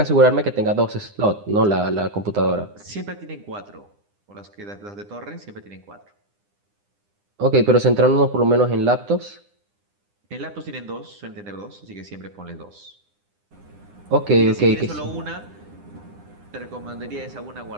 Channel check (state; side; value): late; left; 9.9 ms